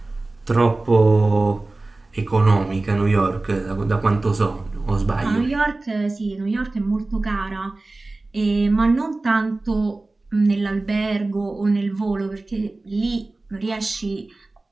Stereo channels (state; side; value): quieter; left; 3.1 dB